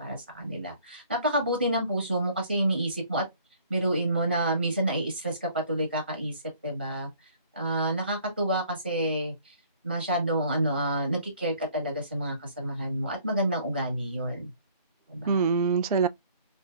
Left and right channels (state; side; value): inverted; both; correlation -0.57